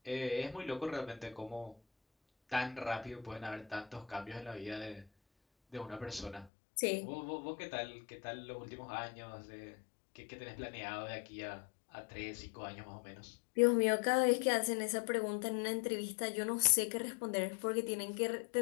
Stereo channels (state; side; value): drops out; right; at 6.5 s